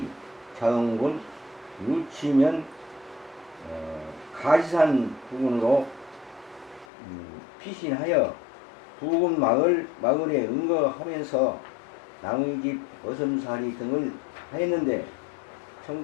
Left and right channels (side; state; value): right; drops out; at 6.9 s